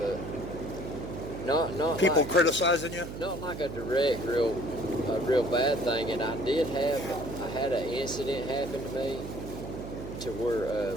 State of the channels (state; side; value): noise; right; hum, 9 dB below the sound